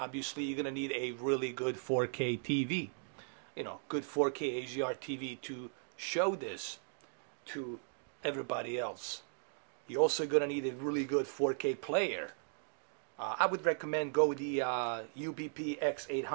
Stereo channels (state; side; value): silent; left; digital silence